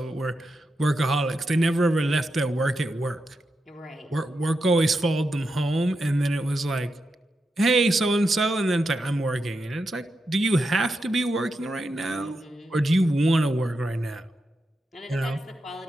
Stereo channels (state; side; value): normal; both; correlation 0.87